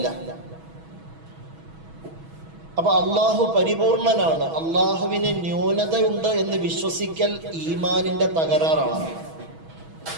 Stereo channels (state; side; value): late; left; 6.2 ms